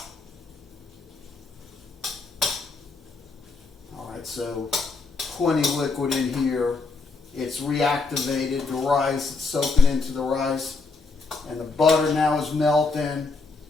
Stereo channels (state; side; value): quieter; right; 4.1 dB